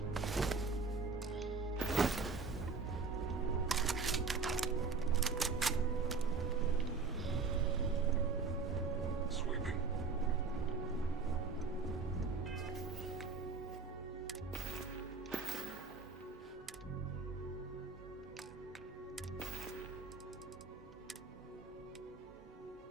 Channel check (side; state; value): left; quieter; 4.6 dB